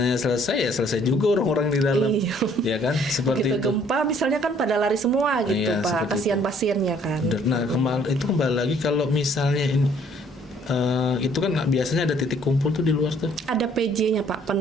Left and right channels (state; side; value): normal; both; correlation 0.61